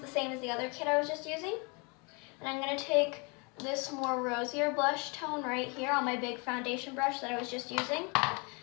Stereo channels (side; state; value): right; quieter; 31.5 dB